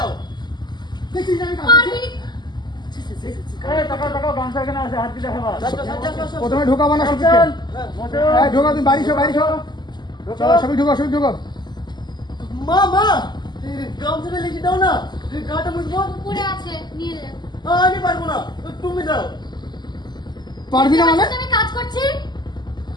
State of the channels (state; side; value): late; right; 0.21 ms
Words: দেখি আমি পারবি প্রথমে ঢোকাবো না ঢোকা তুমি বাড়ি বাইরে চলো সবাই ঢোকা মা গামছাটা লিখে দাও না গাটা মুছবো উপরে আছে নিয়ে নে আমি পারবো না তুমি দাও পারবি না মানে আমি কাজ করছি